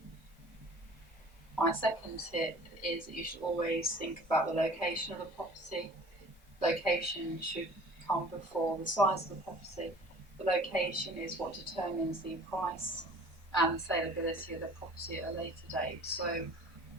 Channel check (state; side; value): normal; both; correlation 0.47